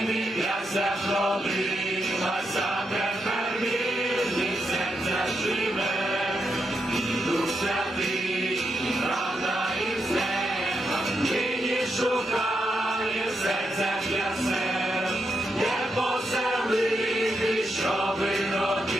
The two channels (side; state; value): both; normal; correlation 0.83